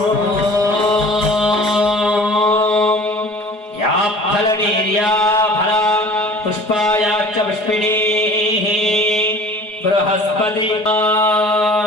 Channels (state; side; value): late; right; 4.7 ms